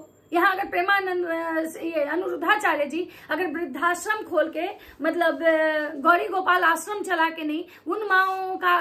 यहाँ अगर प्रेमानंद ये अनुरुद्धाचार्य जी अगर वृद्धाश्रम खोल के मतलब गौरी गोपाल आश्रम चला के नहीं उन माओ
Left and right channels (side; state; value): both; identical; correlation 1.00